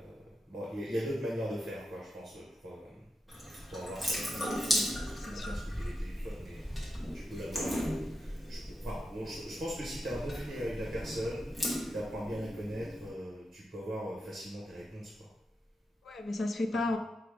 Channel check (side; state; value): both; normal; correlation 0.87